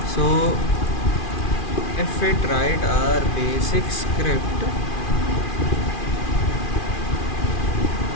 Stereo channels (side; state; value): right; late; 2.4 ms